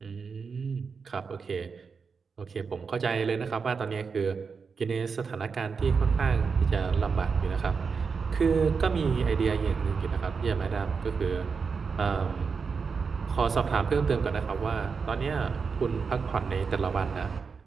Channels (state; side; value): quieter; left; 5.4 dB